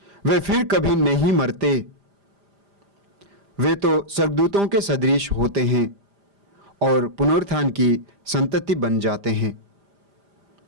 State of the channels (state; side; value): late; left; 5.0 ms